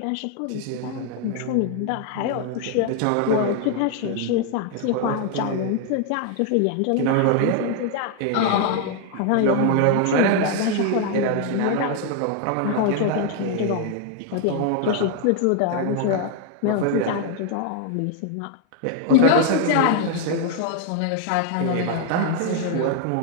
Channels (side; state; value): both; different; correlation 0.00